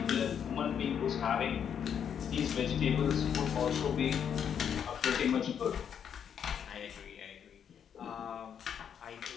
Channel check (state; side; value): quieter; right; 8.2 dB